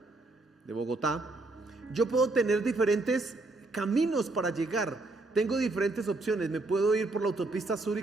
de Bogotá, yo puedo tener diferentes caminos para llegar. Tengo diferentes opciones. Me puedo ir por la autopista sur y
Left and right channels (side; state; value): left; quieter; 3.1 dB